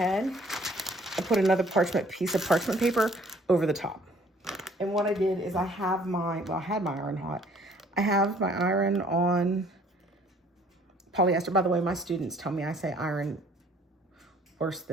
and put another piece of parchment paper over the top. And what I did is I had my iron hot. I have my iron on polyester. By the way, my students tell me I say iron worse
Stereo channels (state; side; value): normal; both; correlation 0.58